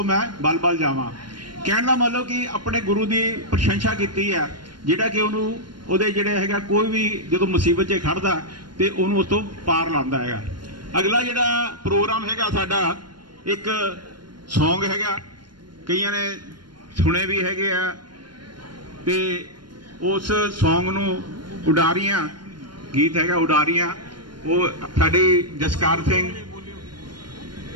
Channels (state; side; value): late; left; 0.72 ms